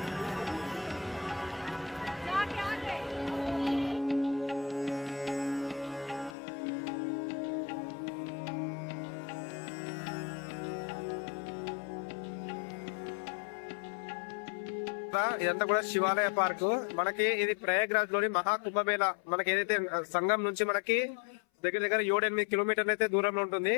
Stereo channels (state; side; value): drops out; right; at 6.4 s